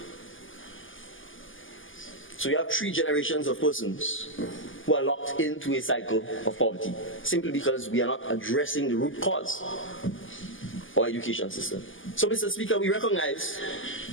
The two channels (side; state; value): right; late; 0.58 ms